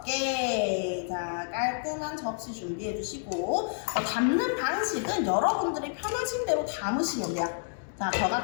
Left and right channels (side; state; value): right; silent; digital silence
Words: 자, 깔끔한 접시 준비해 주시고, 담는 방식은 여러분들이 편하신 대로 담으시면 돼요. 자, 저